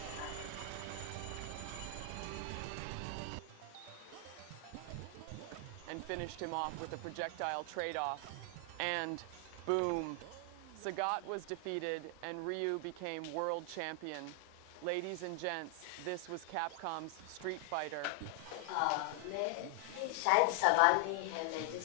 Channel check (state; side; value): different; both; correlation 0.00